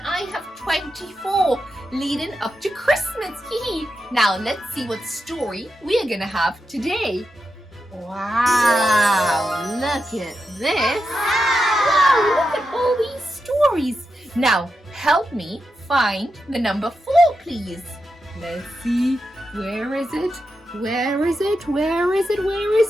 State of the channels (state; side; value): normal; both; correlation 0.87